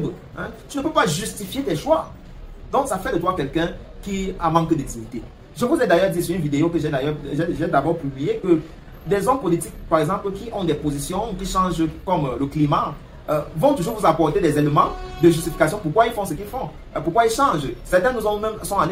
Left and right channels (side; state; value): both; identical; correlation 1.00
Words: Hein? Tu ne peux pas justifier tes choix. Donc, ça fait de toi quelqu'un qui a manque de dignité. Je vous ai d'ailleurs dit sur une vidéo que j'ai d'abord publiée que des hommes politiques, par exemple, qui ont des positions qui changent comme le climat, vont toujours vous apporter des éléments de justification pourquoi ils font ce qu'ils font, pourquoi ils changent. Certains sont